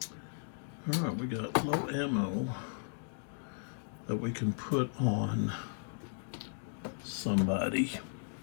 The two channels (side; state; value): right; silent; digital silence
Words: All right, we got low ammo that we can put on somebody.